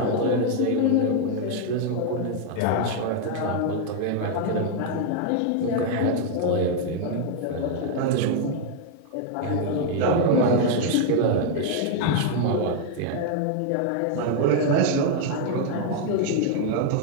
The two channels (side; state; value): both; different; correlation 0.00